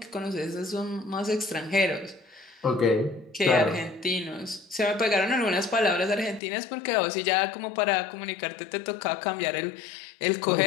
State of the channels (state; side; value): drops out; right; at 6.4 s